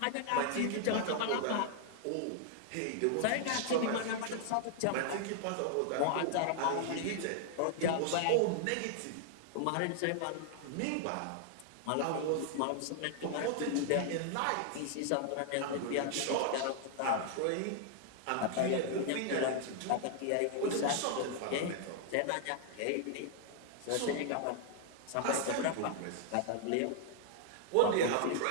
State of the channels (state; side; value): different; both; correlation 0.00